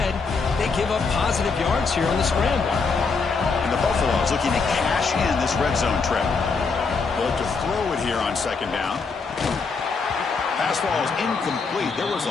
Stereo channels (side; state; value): right; quieter; 4.7 dB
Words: they give up positive yards here on the scramble. And the Buffaloes looking to cash in this red zone trip. They'll have to throw it here on second down. Pass ball is incomplete. There was